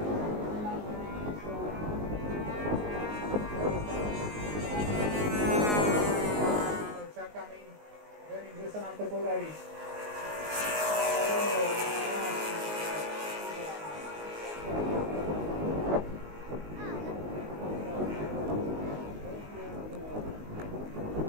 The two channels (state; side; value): late; left; 19 ms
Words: Verím, že sa nám to podarí.